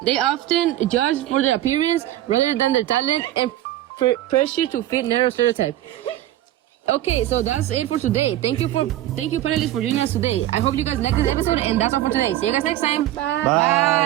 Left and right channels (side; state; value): left; quieter; 14.0 dB